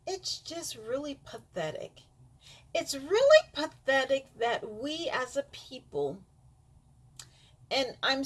it's just really pathetic. It's really pathetic that we as a people, and I'm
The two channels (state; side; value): identical; both; correlation 1.00